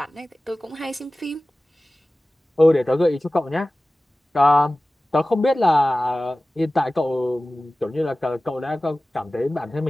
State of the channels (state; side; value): normal; both; correlation 0.97